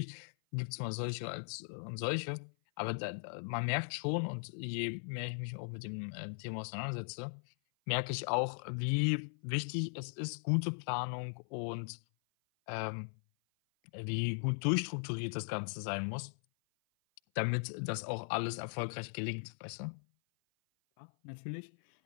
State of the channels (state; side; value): silent; right; 52 dB below the other